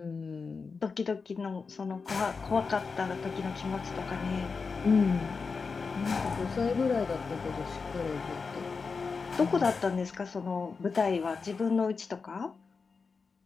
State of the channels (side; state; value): right; quieter; 4.9 dB